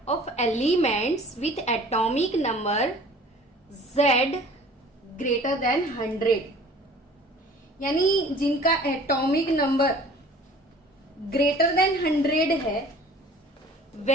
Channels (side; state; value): both; normal; correlation 0.48